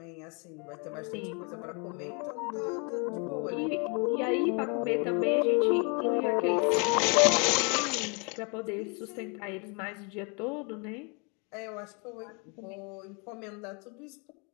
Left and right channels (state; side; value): quieter; right; 34.1 dB